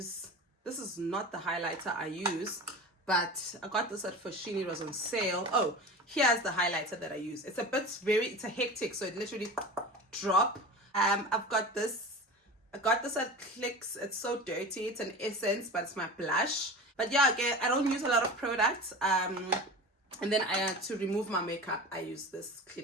is not the highlighter I use, but I got this at Foschini. It was on sale. Oh, here's the highlighter that I use. It's a hectic, so it literally drop. I've got this. I got this at Clicks. It's so dirty. It's an essence, but it's my blush. But yeah, again, I don't use a lot of products. And then to remove my makeup, I use this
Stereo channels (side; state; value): both; normal; correlation 0.32